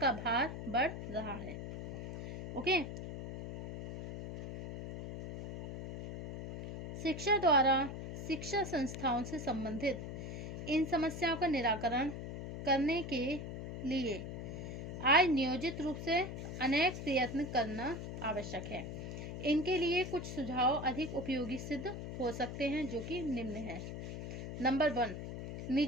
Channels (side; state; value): left; noise; hum, 7 dB below the sound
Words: भार बढ़ रहा है। ओके। शिक्षा द्वारा शिक्षा संस्थाओं से संबंधित इन समस्याओं का निराकरण करने के लिए आज नियोजित रूप से अनेक प्रयत्न करना आवश्यक है। इनके लिए कुछ सुझाव अधिक उपयोगी सिद्ध हो सकते हैं, जो कि निम्न है। नंबर 1,